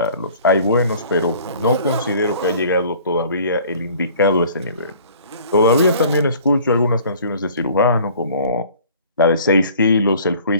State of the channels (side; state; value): both; inverted; correlation -0.51